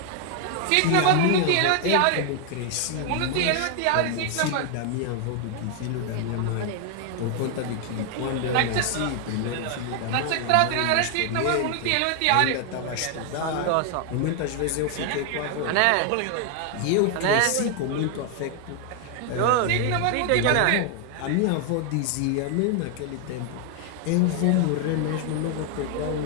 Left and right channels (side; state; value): both; different; correlation 0.00